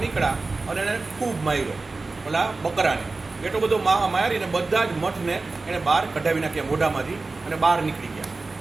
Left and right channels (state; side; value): quieter; left; 3.6 dB